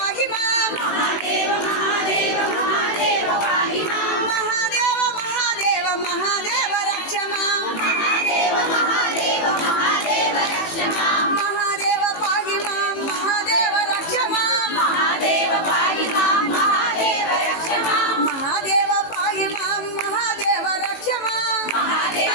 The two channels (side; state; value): right; late; 18 ms